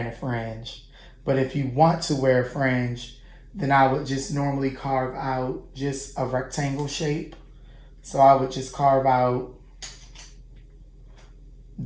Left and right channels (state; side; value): identical; both; correlation 1.00